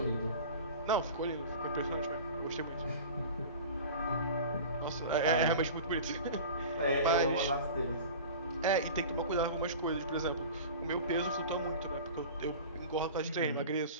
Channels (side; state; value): both; inverted; correlation -0.37